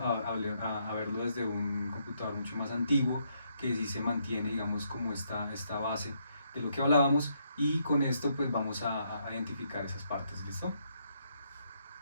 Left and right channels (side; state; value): both; inverted; correlation -0.75